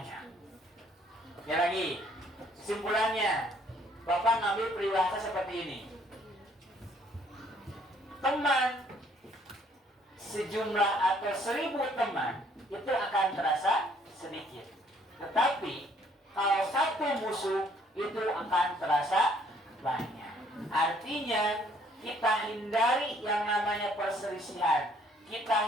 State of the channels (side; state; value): both; normal; correlation 0.63